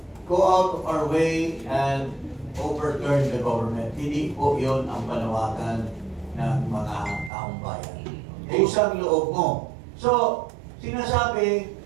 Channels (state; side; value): drops out; left; at 7.3 s